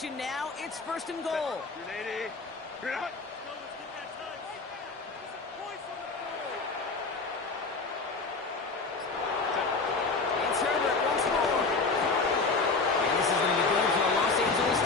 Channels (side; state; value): right; quieter; 4.0 dB